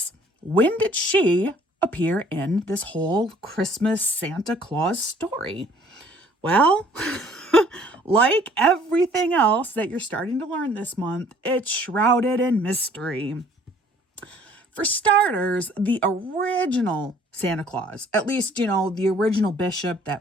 When did she appear in this whole Christmas Santa Claus story? Well, like everything else that you're starting to learn this month, it's shrouded in mystery. For starters, the original Santa Claus, at least, the original bishop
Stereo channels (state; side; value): normal; both; correlation 0.57